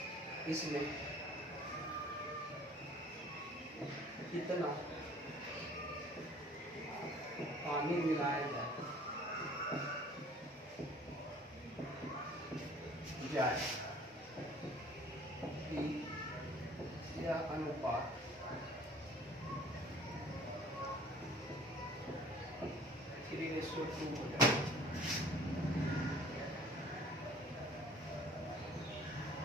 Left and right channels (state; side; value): normal; both; correlation 0.51